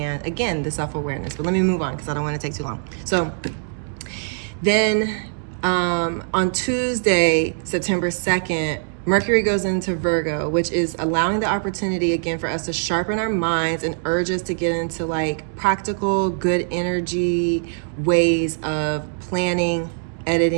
again, the self-awareness. But let me move on because I don't want to take too long. So then on Tuesday, September 2nd, Mercury goes into Virgo, which is allowing the opportunity again for us to sharpen our minds and urge us to get into like practical, good energy ways of planning,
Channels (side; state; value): left; silent; 64 dB below the other